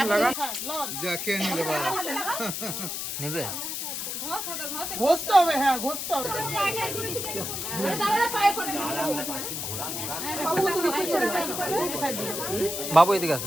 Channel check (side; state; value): left; noise; hiss, 4 dB below the sound